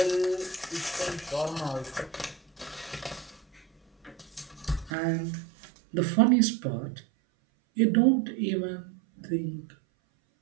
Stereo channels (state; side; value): drops out; left; at 4.9 s